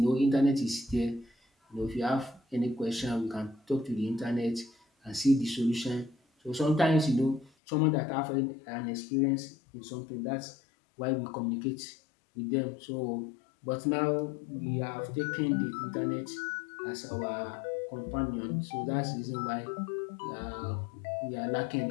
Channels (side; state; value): right; drops out; at 7.5 s